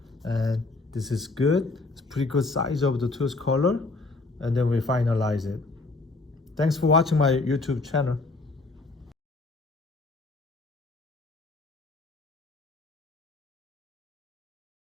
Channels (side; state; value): right; quieter; 3.4 dB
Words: And this is good. It's pretty good size of the tooth color. And then we finalize it. Thanks for watching my YouTube channel.